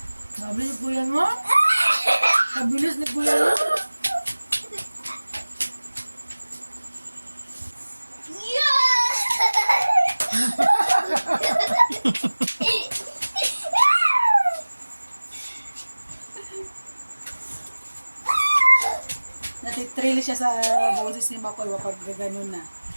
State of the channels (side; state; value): both; inverted; correlation -1.00